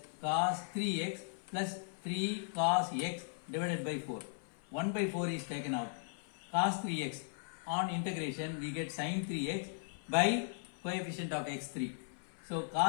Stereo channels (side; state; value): right; silent; 53 dB below the other